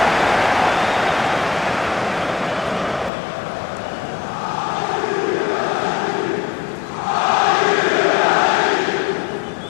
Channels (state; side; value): drops out; right; at 3.1 s